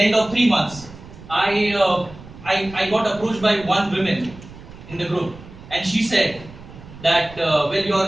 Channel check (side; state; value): right; noise; rumble, 18 dB below the sound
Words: end of 3 months, I got approached by one woman in the group, and she said that well,